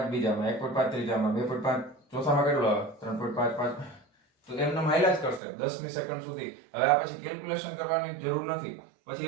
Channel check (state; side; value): drops out; left; at 5.4 s